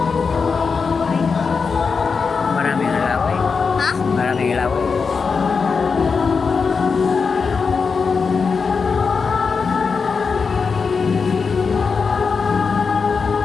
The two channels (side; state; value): right; quieter; 5.2 dB